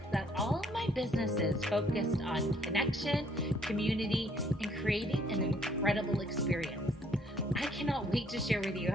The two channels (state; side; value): normal; both; correlation 0.65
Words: that all of my businesses focused on connection, community, and creating an incredible experience. I cannot wait to share with you